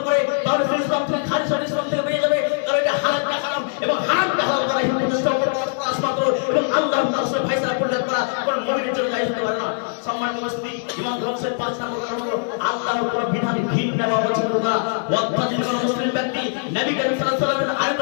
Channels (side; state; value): right; silent; digital silence